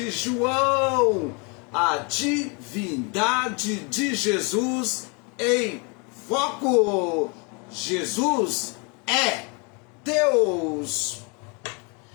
João, a divindade de Jesus em foco. Jesus é Deus.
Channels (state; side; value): quieter; right; 32.6 dB